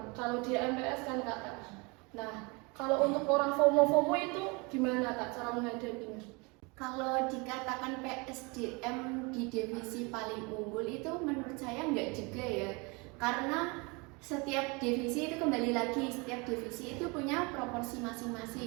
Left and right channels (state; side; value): quieter; left; 28.7 dB